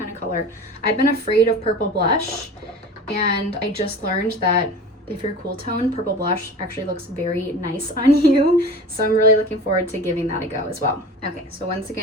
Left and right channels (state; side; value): normal; both; correlation 0.36